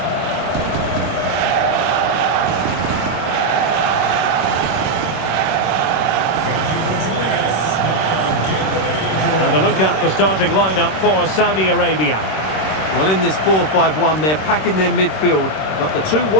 And a look at the starting lineup for Saudi Arabia. Well, in this 4-5-1, they're packing their midfield, but the two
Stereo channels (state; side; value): late; right; 26 ms